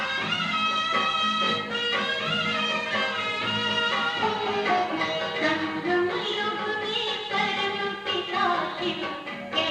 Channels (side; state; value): both; identical; correlation 1.00